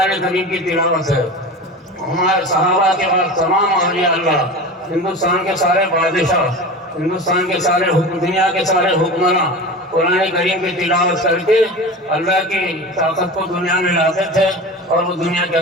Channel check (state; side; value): normal; both; correlation 0.31